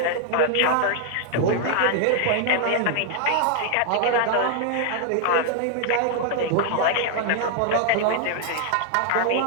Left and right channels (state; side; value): different; both; correlation 0.00